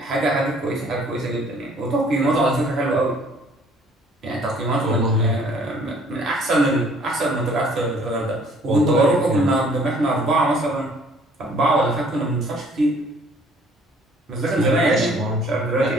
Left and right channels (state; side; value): normal; both; correlation 0.57